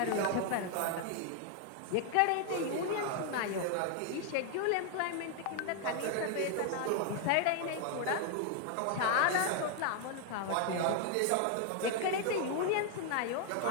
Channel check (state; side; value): different; both; correlation 0.00